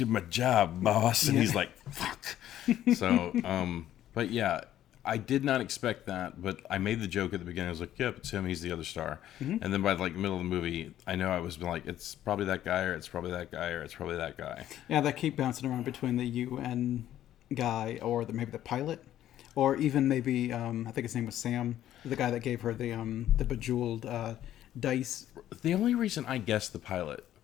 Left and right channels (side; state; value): right; quieter; 12.2 dB